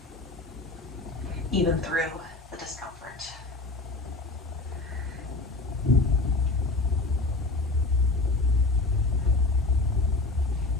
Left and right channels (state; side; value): quieter; right; 3.3 dB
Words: even through the discomfort.